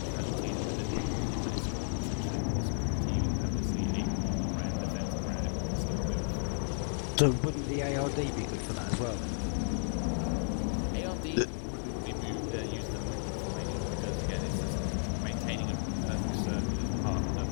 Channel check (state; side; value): silent; right; digital silence